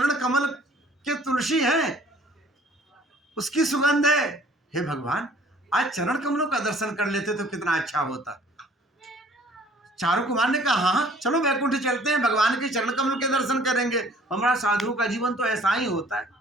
कमल के तुलसी है, उसकी सुगंध है। हे भगवान, आज चरण कमलों का दर्शन कर लेते तो कितना अच्छा होता। चारों कुमार ने कहा, हाँ चलो वैकुंठ चलते हैं, भगवान के चरण कमल के दर्शन करेंगे। हमारा साधु का जीवन तो ऐसा ही होता है,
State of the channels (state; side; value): normal; both; correlation 0.55